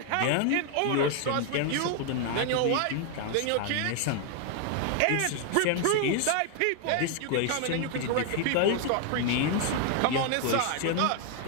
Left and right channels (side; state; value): both; different; correlation 0.00